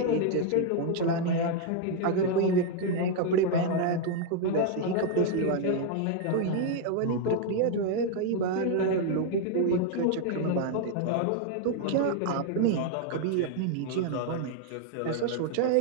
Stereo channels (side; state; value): both; different; correlation 0.00